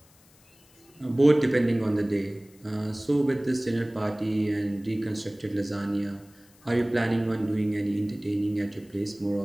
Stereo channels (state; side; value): noise; left; hiss, 29 dB below the sound